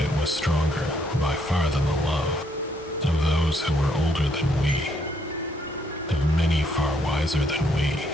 it was stronger by far than the love of those who were older than we, of many far wiser than we.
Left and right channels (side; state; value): both; normal; correlation 0.71